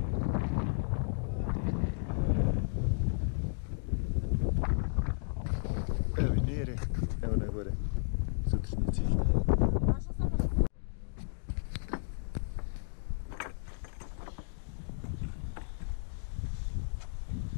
Evo i Nere, evo na gore, sutrašnji cilj.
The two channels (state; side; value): silent; right; digital silence